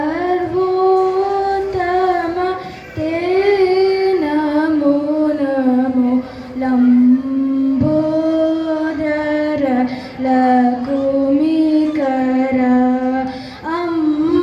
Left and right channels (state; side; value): identical; both; correlation 1.00